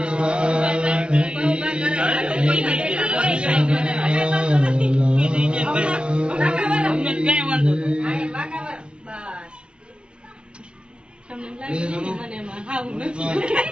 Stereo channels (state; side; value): late; left; 0.057 ms